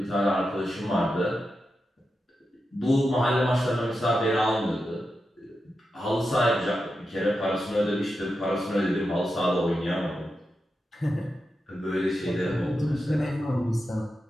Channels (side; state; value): both; normal; correlation 0.89